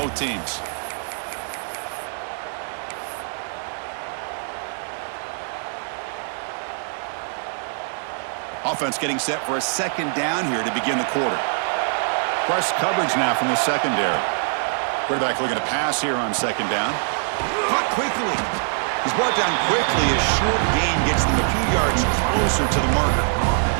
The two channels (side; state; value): left; silent; digital silence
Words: teams. Offense getting set for a 2nd down here to begin the quarter. Press coverage now from the secondary. Quarterback looking to pass here on 2nd down. Caught quickly. He's brought down quickly as short gain gets them a few yards closer to the marker.